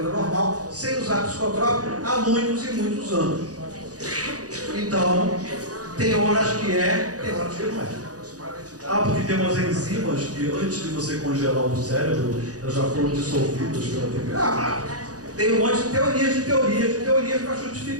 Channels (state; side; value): late; left; 0.67 ms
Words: normal, sem usar psicotrópico há muitos e muitos anos. Então, tem horas que é, tem horas que não é. porque tem umas enzimas que antes de você congelar o cérebro, elas já foram dissolvidas pela vida. Tem um monte de teorias para